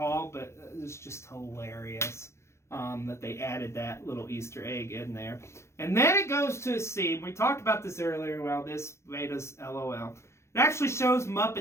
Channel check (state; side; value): late; right; 0.13 ms